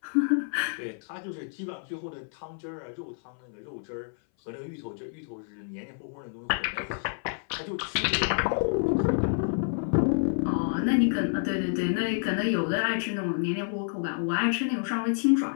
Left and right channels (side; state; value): right; silent; 57 dB below the other